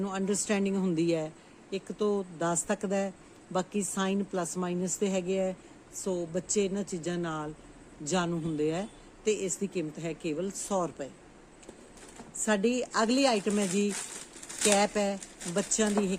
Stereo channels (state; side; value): identical; both; correlation 1.00